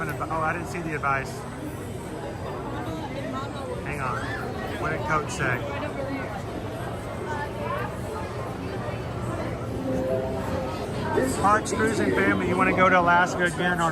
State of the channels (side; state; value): both; identical; correlation 1.00